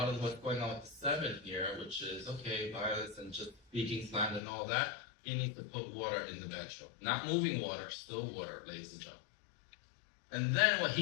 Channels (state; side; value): drops out; right; at 4.4 s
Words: of what's going on with the 7 here, which is, okay, violence and just speaking slander and all that, he needs to put water in the bedroom. Not moving water, still water, ladies and gentlemen. And then what